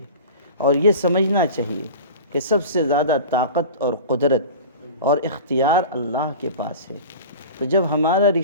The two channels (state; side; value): inverted; both; correlation -0.35